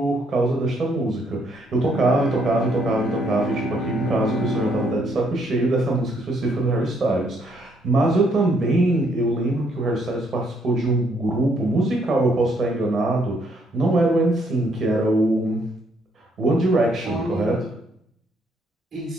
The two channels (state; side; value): normal; both; correlation 0.70